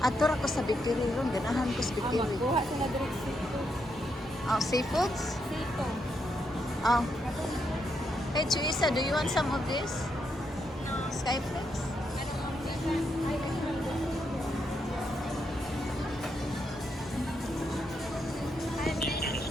Ato ra ko sa bikiri ron, ganahan ko sa bikiri. Kuha sila direct seafood. Seafoods? Seafood. Oh. Hey, Teresa, do you want some of this? Skyflix?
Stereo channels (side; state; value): both; normal; correlation 0.80